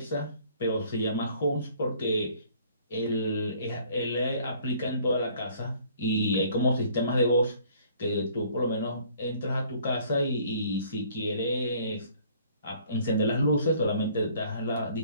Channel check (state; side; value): inverted; both; correlation -0.57